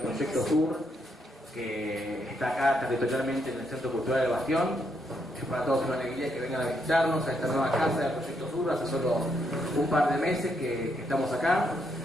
Sur, que está acá territorialmente en el Centro Cultural del Bastión. Es para todos una alegría que vengan a visitarnos a esta nueva casa del Proyecto Sur. Hace solo un par de meses que estamos acá.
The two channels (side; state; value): both; normal; correlation 0.77